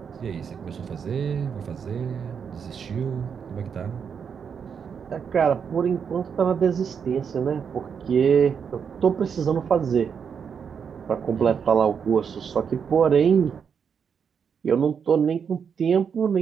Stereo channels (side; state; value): left; quieter; 6.8 dB